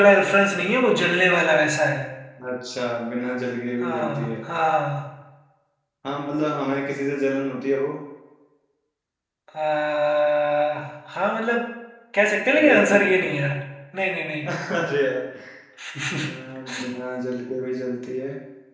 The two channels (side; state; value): both; identical; correlation 1.00